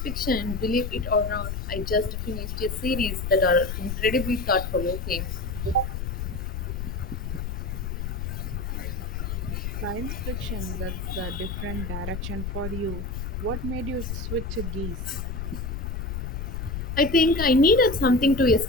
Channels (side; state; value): left; noise; rumble, 4 dB below the sound